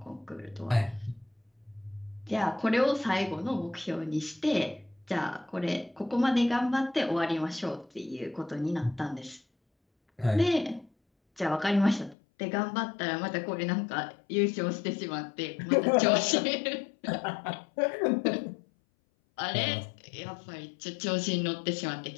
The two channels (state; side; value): drops out; right; at 12.2 s